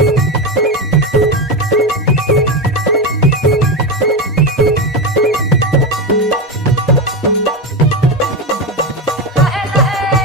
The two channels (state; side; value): normal; both; correlation 0.14